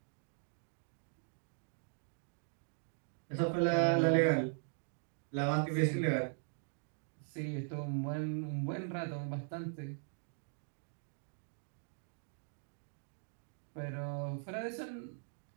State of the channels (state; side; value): silent; left; digital silence